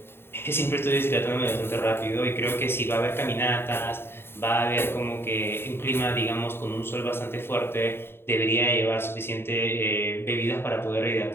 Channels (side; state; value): right; late; 0.11 ms